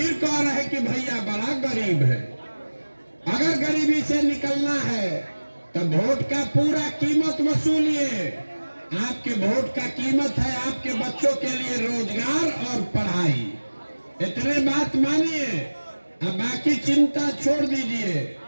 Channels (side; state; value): both; inverted; correlation -1.00